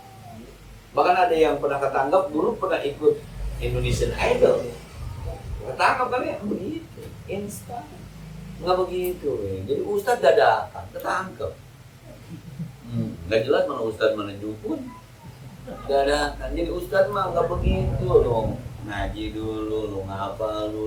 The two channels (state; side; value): identical; both; correlation 1.00